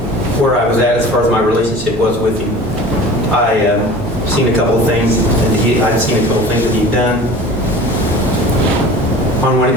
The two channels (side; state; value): both; normal; correlation 0.40